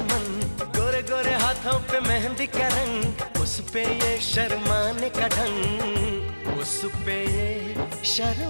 मन, गोरे गोरे हाथों पे मेहंदी का रंग, उस पे ये शर्माने का ढंग, उस पे ये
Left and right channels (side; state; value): both; inverted; correlation -1.00